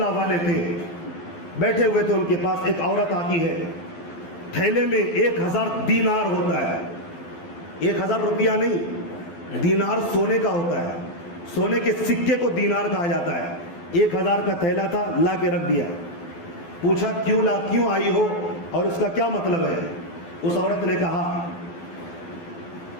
والے تھے. بیٹھے ہوئے تھے, ان کے پاس ایک عورت آتی ہے, تھیلے میں 1000 دینار ہوتا ہے. 1000 روپیہ نہیں, دینار سونے کا ہوتا ہے. سونے کے سکے کو دینار کہا جاتا ہے. 1000 کا تھیلا تھا, لا کے رکھ دیا. پوچھا کیوں آئی ہو اور اس کا کیا مطلب ہے؟ اس عورت نے کہا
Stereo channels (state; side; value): late; right; 12 ms